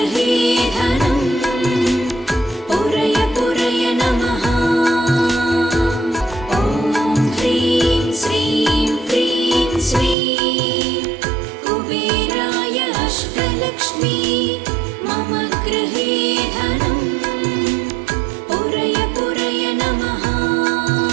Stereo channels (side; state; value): left; drops out; at 10.2 s